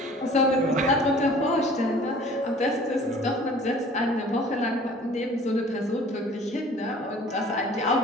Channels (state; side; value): normal; both; correlation 0.49